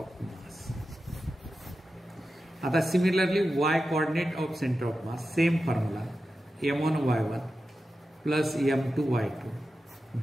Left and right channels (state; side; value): normal; both; correlation 0.92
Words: mass. आता similarly Y coordinate of centre of mass, same formula M1y1 plus M2y2